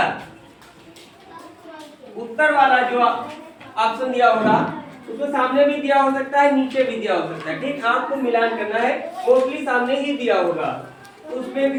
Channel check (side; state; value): both; identical; correlation 1.00